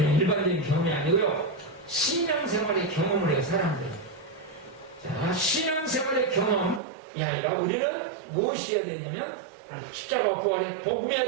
일반적인 경험이 아니고요. 신앙생활의 경험을 해요, 사람들. 자, 신앙생활의 경험이 아니라 우리는 무엇이어야 되냐면 십자가 부활의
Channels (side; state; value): left; drops out; at 6.8 s